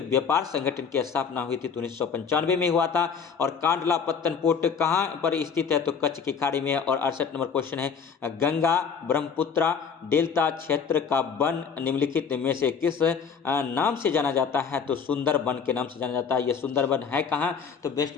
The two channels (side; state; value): right; quieter; 6.4 dB